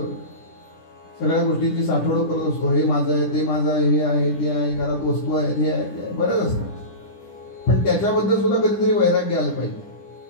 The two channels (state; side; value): late; right; 10 ms